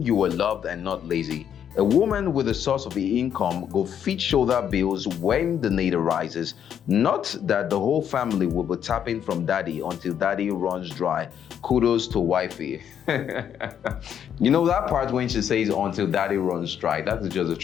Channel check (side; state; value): right; quieter; 8.9 dB